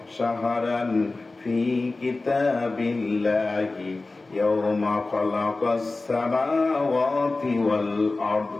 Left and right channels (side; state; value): right; quieter; 3.4 dB